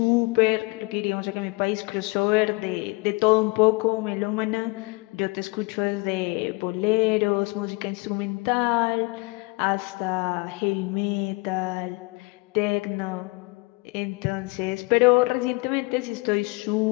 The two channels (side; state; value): right; quieter; 26.6 dB